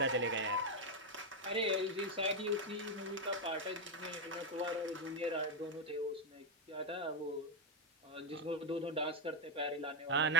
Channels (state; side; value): normal; both; correlation 0.03